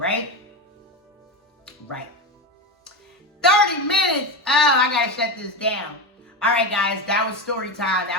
Right. 30 minutes. Oh, I got to shut this down. All right, guys, that was story time.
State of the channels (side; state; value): both; normal; correlation 0.18